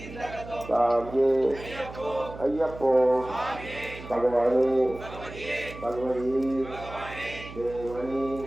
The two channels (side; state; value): right; noise; hum, 14 dB below the sound